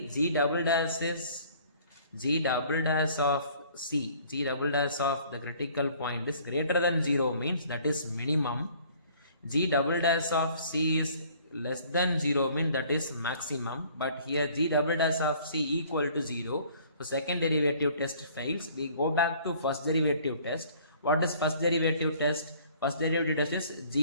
g double dash is g double dash of c. G double dash of the critical point is greater than 0 means that is minimum. G double dash of c is less than 0 means that is maximum. But here g double dash of c equal to 0. So second derivative test fails. We go back to first derivative test. What is first derivative test? First derivative test is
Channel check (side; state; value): both; inverted; correlation -0.55